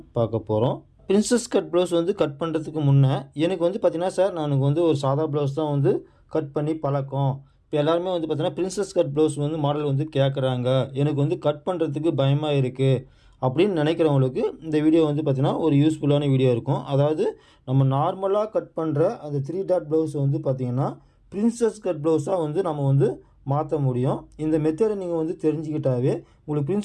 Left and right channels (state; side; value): identical; both; correlation 1.00